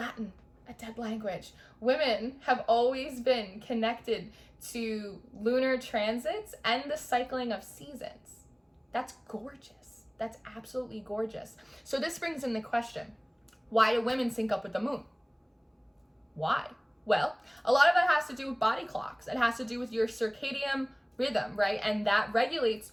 a dead language, women have always been connected to lunar transits and the cycling of seasons. That's gorgeous. That's absolutely gorgeous. So this brings in the question, why do women sync up with the moon? Why? Well, a lot of it has to do with body clocks. It has to do with your circadian rhythm, right? And that regulates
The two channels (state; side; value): identical; both; correlation 1.00